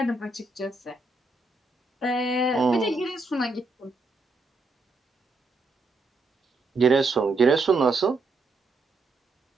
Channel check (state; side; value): quieter; left; 3.3 dB